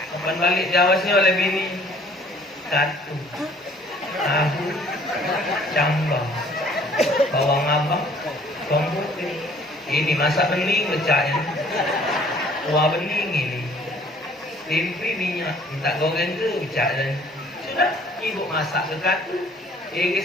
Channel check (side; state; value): both; normal; correlation 0.56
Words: Kapan balik Jawa sini oleh bini, katu, tahu, cambah, bawang abang, bawang putih. Ini masak bening pecahnya, kuah bening ini, tempe minyak, minta goreng ke pecah. Sudah, ibu masak ke katu,